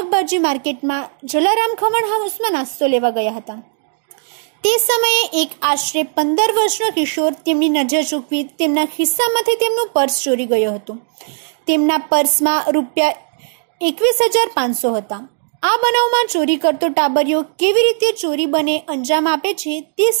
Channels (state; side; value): silent; left; digital silence